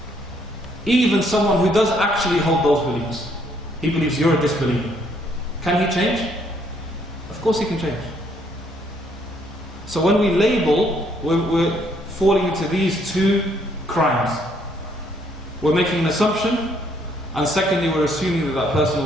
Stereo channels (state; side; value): normal; both; correlation 0.68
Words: Even someone who does actually hold those beliefs, he believes you're a disbeliever. Can he change? Of course he can change. So when we label, we're falling into these two crimes. We're making an assumption, and secondly we're assuming that that person